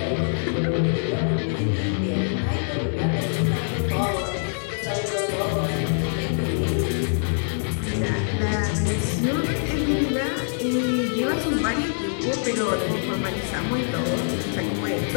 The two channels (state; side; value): silent; right; digital silence